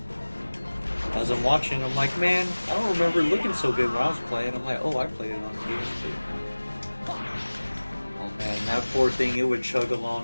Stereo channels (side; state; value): both; inverted; correlation -1.00